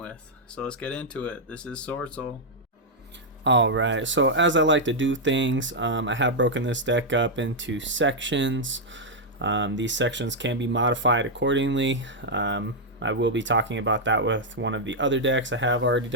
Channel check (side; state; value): both; normal; correlation -0.03